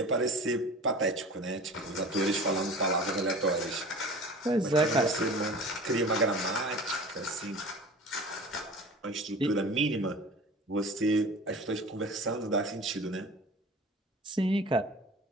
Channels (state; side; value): normal; both; correlation 0.39